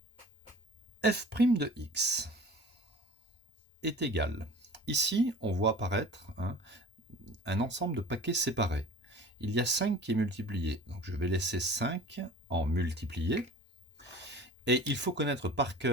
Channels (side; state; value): both; normal; correlation 0.41